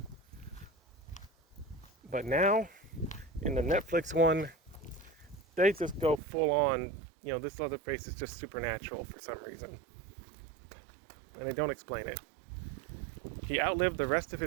But now, in the Netflix one, they just go full on, this Leatherface is just supernatural for some reason. And they don't explain it. He outlived the rest of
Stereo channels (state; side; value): drops out; left; at 6.2 s